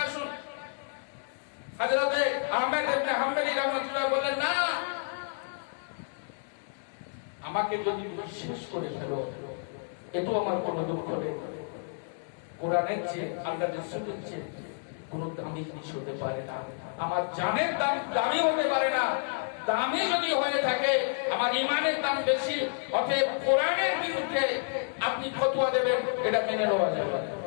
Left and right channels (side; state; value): right; silent; digital silence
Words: আসুন। হযরত আহমেদ ইবনে হাম্বলি রাহমাতুল্লাহ বললেন, না, আমাকে যদি বিশ্বাস করে ফেলো এতো আমার কোনো দুঃখ নেই। কোরআনের চেয়ে আল্লাহর রাসূলের চেয়ে কোনো দামি জিনিস হতে পারে না। আমার জানের দাম দামি হতে পারে না। দামি যদি হয়ে থাকে আমার ঈমানের দাম বেশি। অতএব কোরআনের বিরুদ্ধে আপনি ফতোয়া দেবেন, এটা মেনে নেওয়া যাবে না।